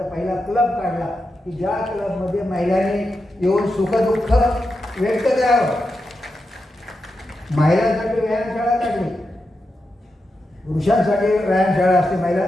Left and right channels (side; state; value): both; normal; correlation 0.88